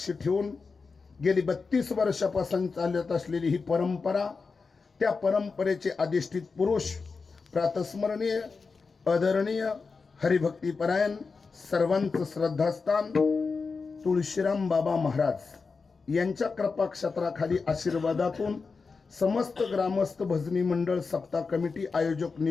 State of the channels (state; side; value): quieter; right; 4.6 dB